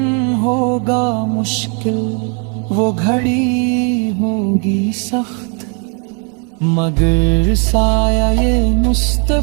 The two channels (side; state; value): left; quieter; 38.2 dB